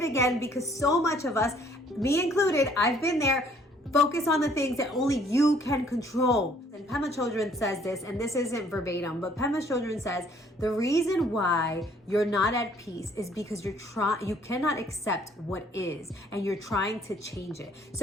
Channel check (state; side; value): normal; both; correlation 0.61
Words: again, because so much of us, me included, I've been there. Focus on the things that only you can control. And Pema Chodron says this, and this isn't verbatim, but Pema Chodron says the reason why you're not at peace is because you cannot accept what is, and you're trying to change it.